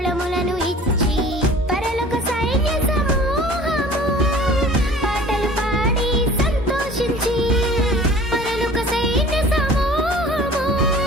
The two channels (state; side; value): normal; both; correlation 0.46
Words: ఇచ్చి పరలోక సైన్య సమూహము పాటలు పాడి సంతోషించి పరలోక సైన్య సమూహము